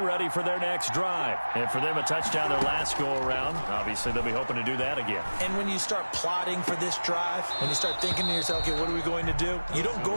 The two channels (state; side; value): inverted; both; correlation -1.00